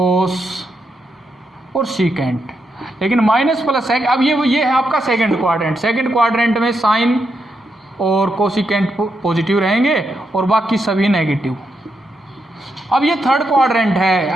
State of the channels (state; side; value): normal; both; correlation 0.82